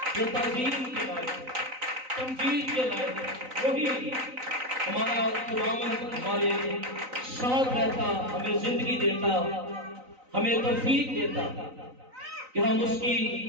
جو تعظیم کے لائق ہے، تمجید کے لائق ہے، وہی ہمارا خداوند ہمارے ساتھ رہتا، ہمیں زندگی دیتا، ہمیں توفیق دیتا کہ ہم اس کی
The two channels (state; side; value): late; left; 3.9 ms